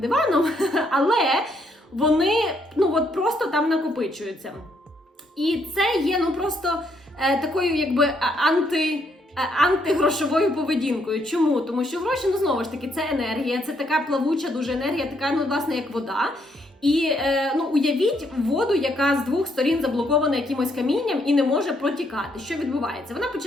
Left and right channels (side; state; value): both; normal; correlation 0.73